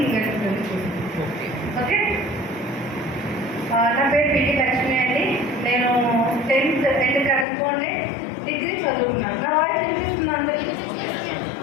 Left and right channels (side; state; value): right; drops out; at 7.5 s